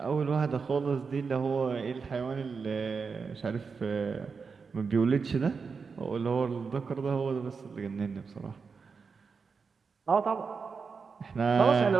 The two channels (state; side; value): quieter; left; 5.2 dB